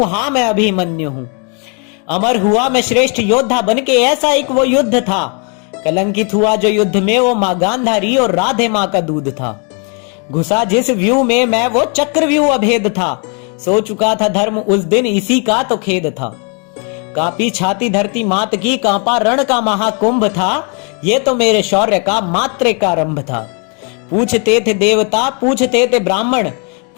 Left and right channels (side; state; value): right; quieter; 37.3 dB